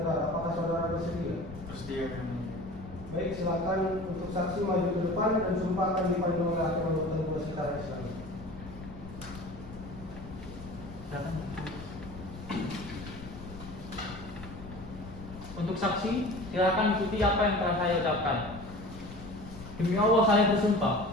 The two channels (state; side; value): noise; left; rumble, 14 dB below the sound